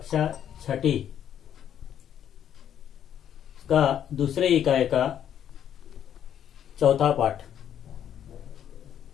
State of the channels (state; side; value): quieter; right; 9.7 dB